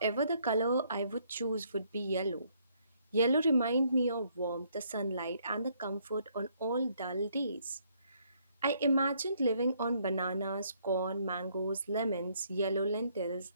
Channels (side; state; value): both; inverted; correlation -0.69